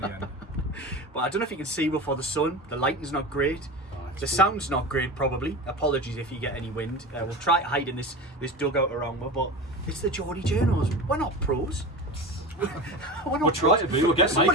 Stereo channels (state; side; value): normal; both; correlation 0.28